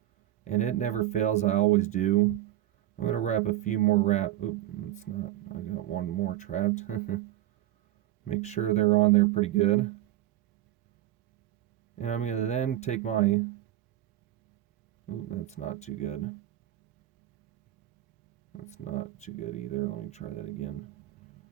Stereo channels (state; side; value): quieter; left; 14.0 dB